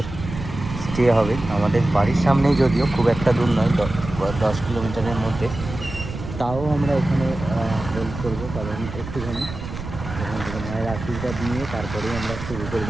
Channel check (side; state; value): right; noise; rumble, 9 dB below the sound